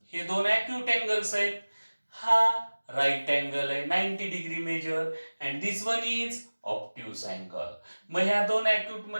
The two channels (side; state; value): both; inverted; correlation -1.00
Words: हे दोन अॅक्यूट अँगल्स आहेत. हा राईट अँगल आहे 90 degree measure, and this one is obtuse angle. मग ह्या दोन अॅक्यूट